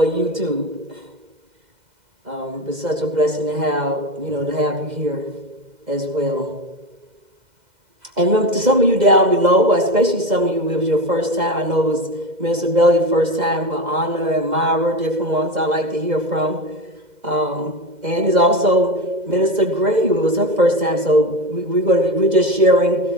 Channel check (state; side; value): late; left; 2.0 ms